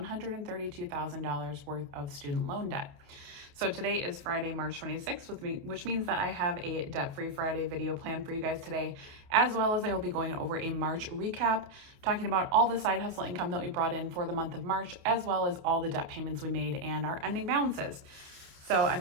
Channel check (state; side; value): late; left; 28 ms